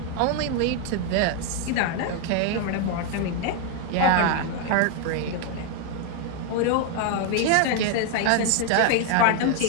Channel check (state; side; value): different; both; correlation 0.01